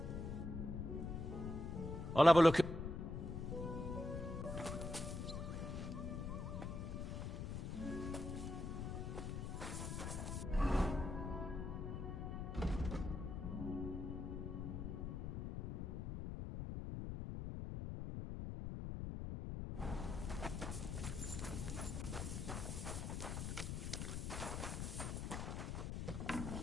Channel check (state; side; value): noise; left; rumble, 3 dB below the sound